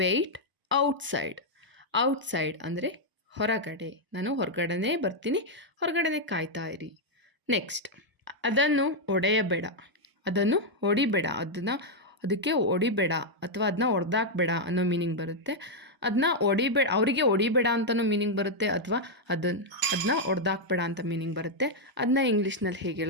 outside. Outside ಅಂದರೆ ಹೊರಗಡೆ, ನಾನು ಹೊರಗಡೆನೇ ಬರ್ತೀನಿ, ಹೊರಗಡೆನೇ ಕಾಯ್ತಾ ಇರಿ. ನೆಕ್ಸ್ಟ್, ಅದನ್ನು ಒಡೆಯಬೇಡ. ಅದನ್ನು ಹೊಡಿಬೇಡ. ಅದಕ್ಕೆ ಹೊಡಿಬೇಡ ಅಥವಾ ಅದನ್ನ ಹೊಡೆದಾಕ್ಬೇಡ ಅನ್ನೋ ಮೀನಿಂಗ್ ಬರುತ್ತೆ. ಅದನ್ನ ಹೊಡಿಬೇಡ, ಅವರಿಗೆ ಹೊಡಿಬೇಡ ಅಂತಲೂ ಮೀನಿಂಗ್ ಬರುತ್ತೆ, ಅಥವಾ ಅದನ್ನ ಹೊಡೆದಾಕ್ಬೇಡ ಅಂತ ಮೀನಿಂಗ್ ಬರುತ್ತೆ. ಅದನ್ನ ಇಂಗ್ಲೀಷ್ನಲ್ಲಿ ಹೇಗೆ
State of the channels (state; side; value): late; left; 1.0 ms